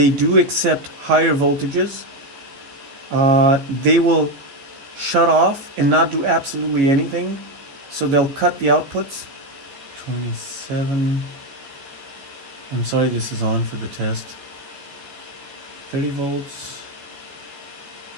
do accept higher voltages. They will shut off and not do absolutely anything. So they'll cut the outputs. 27. I'm sorry, this is on for the test. 30 volts.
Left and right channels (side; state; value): left; late; 15 ms